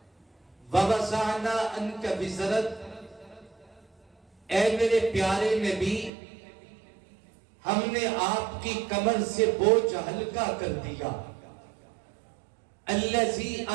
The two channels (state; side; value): drops out; left; at 6.1 s